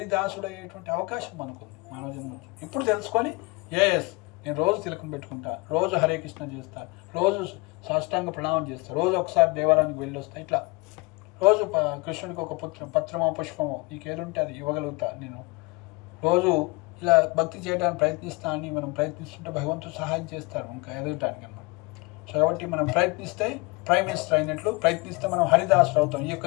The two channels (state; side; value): quieter; right; 26.6 dB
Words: అయ్యేటువంటి అవకాశం మనకుంది మానవ జన్మ. ఇప్పుడు తెలుసుకొని నేను రోజు తిలకం పెట్టుకుంటా, రోజు హరే కృష్ణ చేస్తా, రోజు సాష్టాంగ ప్రణామం చేస్తా, రోజు ఒకసారి దేవాలయానికి వెళ్ళి వస్తా, ఇట్లా రోజు కృష్ణుడికి ఒక పత్రమో పుష్పమో నీకు ఏదుంటే అది ఇవ్వగలుగుతా, నేను రోజు ఇలా భక్తి చేయడానికి ప్రయత్నిస్తా అని మనం ప్రయత్నిస్తుంటే భగవంతుడు సహాయం చేస్తారు ఇంకా ఎదగటానికి అన్నమాట. సో కాబట్టి మనం ప్రయత్నిస్తే ప్రైమ్ మినిస్టర్ అయినట్లు, ప్రయత్నిస్తే మనం హరిదాసుడు అవుతాం ఈ